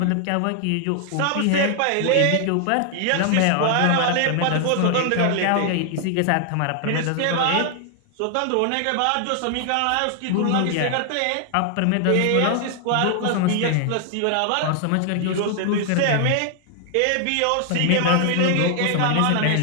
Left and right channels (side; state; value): both; different; correlation 0.00